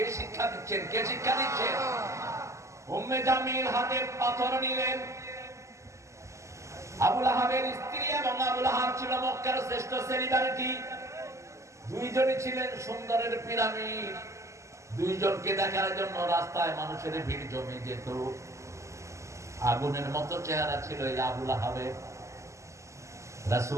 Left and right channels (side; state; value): left; late; 0.14 ms